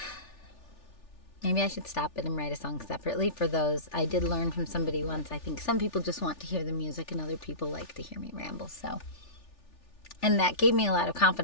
Maybe I should stop it and write a song separately for those. I did learn from somebody once, I think some people just want to hear the music and other people like to hear me ramble, and that gave me a lot of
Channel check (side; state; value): right; late; 3.4 ms